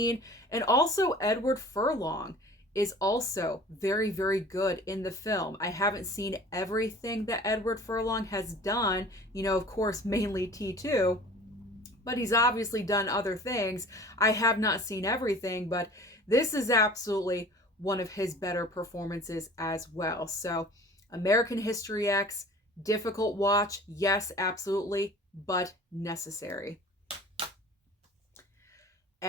And also Edward Furlong is also very, very good in the film. I haven't seen everything that Edward Furlong has done, of course, mainly T2, but he's obviously done other things. I have not seen everything, but this is absolutely one of his better performances as well. So, American History X, difficult watch, yes, absolutely, but necessary.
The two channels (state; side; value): normal; both; correlation 0.44